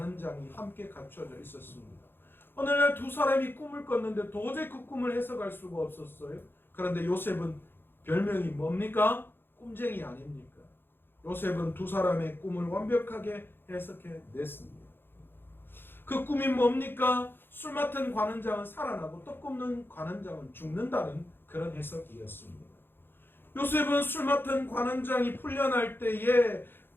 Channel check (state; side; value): late; right; 0.10 ms